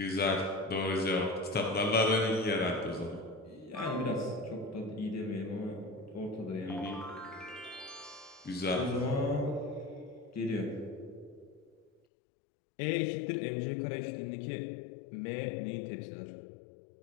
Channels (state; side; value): drops out; right; at 12.0 s